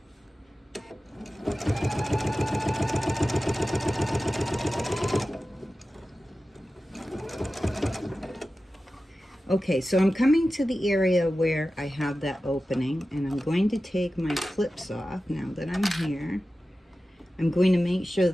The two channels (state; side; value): normal; both; correlation 0.94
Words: Okay, so I'm coming to the area where I have that opening, and I'm going to take my clips off now that I'm here. I'm going to make sure